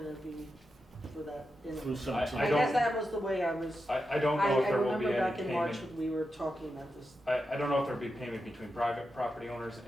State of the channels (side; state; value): both; normal; correlation 0.88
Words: be for that, you know. 317. I don't- guess that was the way I was, I don't know if there will be remember any back in March payment. when we were talking about this. I don't know if there'll be payment between private property owners